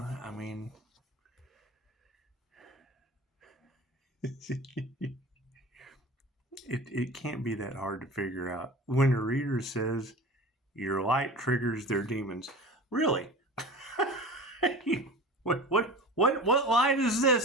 mean... It can't be that hard to figure out. When a reader says your light triggers their demons, really? what light is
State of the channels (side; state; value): both; normal; correlation 0.36